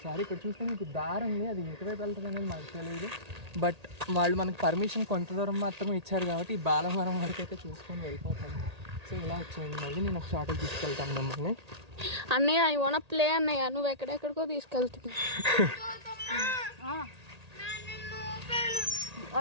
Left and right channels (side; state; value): left; late; 1.8 ms